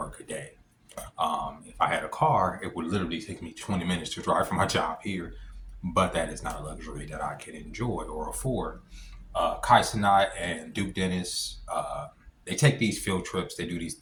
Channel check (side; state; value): both; identical; correlation 1.00